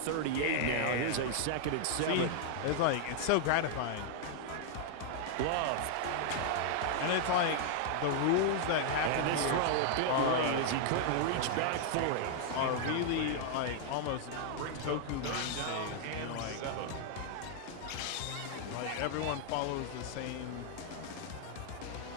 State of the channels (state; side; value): different; both; correlation 0.00